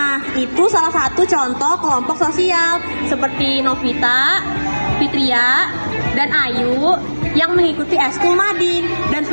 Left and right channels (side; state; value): both; inverted; correlation -1.00